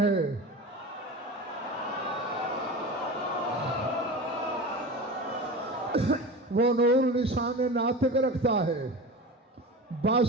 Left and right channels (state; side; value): normal; both; correlation 0.30